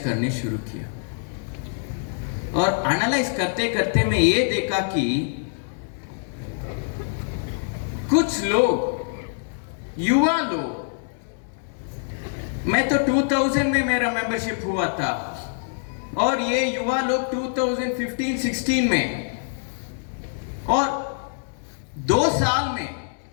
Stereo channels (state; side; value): silent; right; digital silence